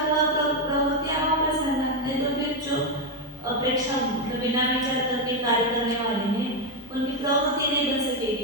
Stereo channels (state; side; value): normal; both; correlation 0.05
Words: प्रवृत्ति अभाव प्रसंग है, तो फिर जो अपेक्षा बिना विचार करके कार्य करने वाले हैं उनकी प्रवृत्ति नहीं बन